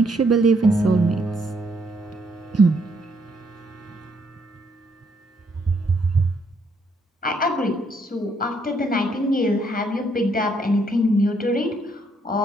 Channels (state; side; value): normal; both; correlation 0.71